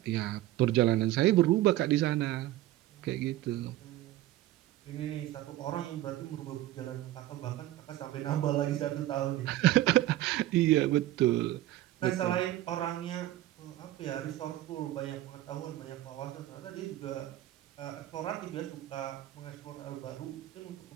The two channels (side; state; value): left; quieter; 15.0 dB